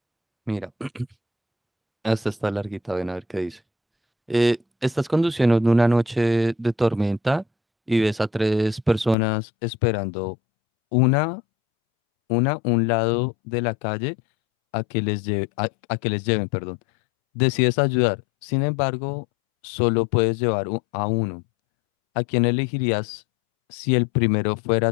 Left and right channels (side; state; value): right; drops out; at 9.2 s